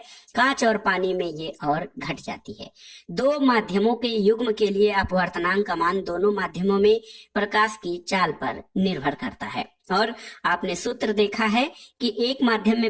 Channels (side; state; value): both; identical; correlation 1.00